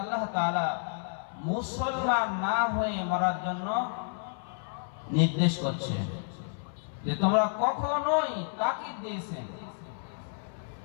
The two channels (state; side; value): silent; right; 57 dB below the other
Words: তাআলা মুসলমান না হয়ে মরার জন্য নির্দেশ করছে, যে তোমরা কখনোই তাকিদ দিয়েছেন,